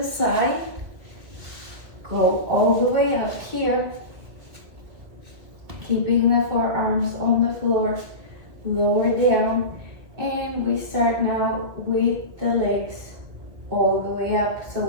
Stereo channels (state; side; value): late; left; 2.1 ms